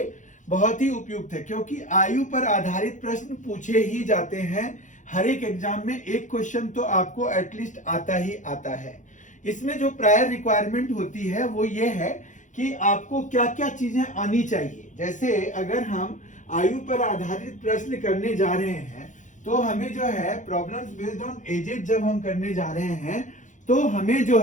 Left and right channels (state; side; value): late; right; 0.36 ms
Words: बहुत ही उपयुक्त है, क्योंकि आयु पर आधारित प्रश्न पूछे ही जाते हैं। हर एक एग्जाम में एक क्वेश्चन तो आपको एटलीस्ट आता ही आता है। इसमें जो प्रायर रिक्वायरमेंट होती है वो ये है कि आपको क्या क्या चीजें आनी चाहिए। जैसे अगर हम आयु पर आधारित प्रश्न करने जा रहे हैं तो हमें जो है प्रॉब्लम्स बेस्ड ऑन एजेस जब हम करने जा रहे हैं तो हमें जो